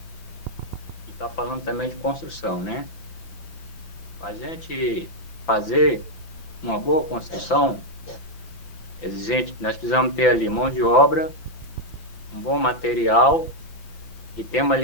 e está falando também de construção, né? Para a gente fazer uma boa construção, exigente, nós precisamos ter ali mão de obra, um bom material e temos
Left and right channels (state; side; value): late; right; 5.9 ms